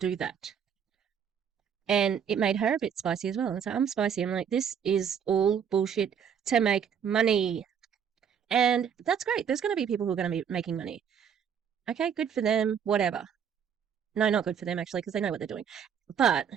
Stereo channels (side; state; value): left; quieter; 7.7 dB